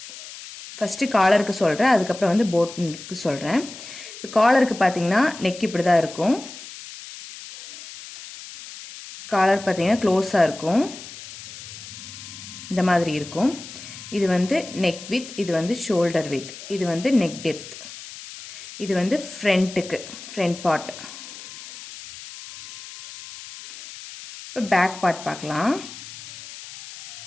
ஃபர்ஸ்ட் collarக்கு சொல்றேன், அதுக்கு அப்புறம் வந்து boatக்கு சொல்றேன். இப்போ collarக்கு பாத்தீங்கன்னா neck இப்படி தான் இருக்கும். collar பாத்தீங்கன்னா க்ளோஸா இருக்கும். இந்த மாதிரி இருக்கும். இது வந்து neck width, இது வந்து shoulder width, இது வந்து neck depth, இது வந்து front part. இப்போ back part பார்க்கலாம்.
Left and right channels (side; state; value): left; noise; hiss, 14 dB below the sound